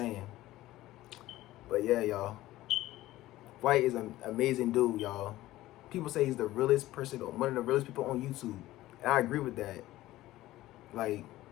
But yeah, y'all. Flight is an amazing dude, y'all. People say he's the realest person, one of the realest people on YouTube, and I agree with that. Like,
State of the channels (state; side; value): quieter; right; 16.1 dB